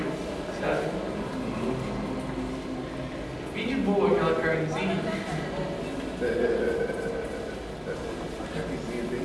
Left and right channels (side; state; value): both; identical; correlation 1.00